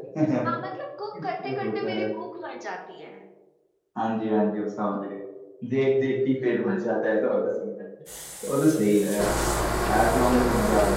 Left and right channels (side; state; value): both; identical; correlation 1.00